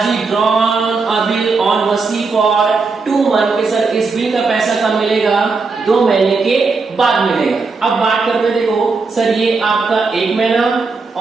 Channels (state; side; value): quieter; left; 4.3 dB